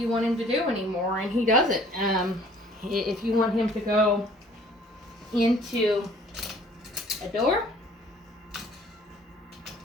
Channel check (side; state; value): both; normal; correlation 0.55